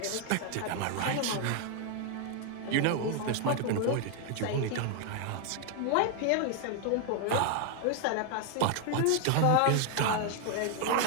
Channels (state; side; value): different; both; correlation 0.00